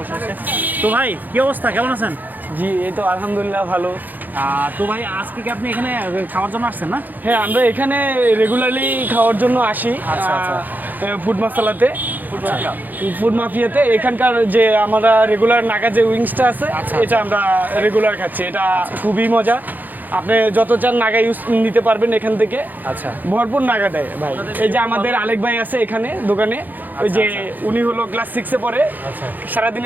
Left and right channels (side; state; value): left; late; 0.085 ms